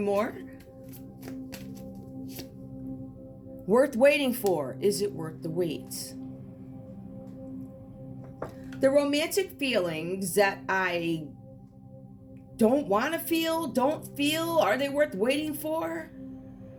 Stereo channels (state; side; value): identical; both; correlation 1.00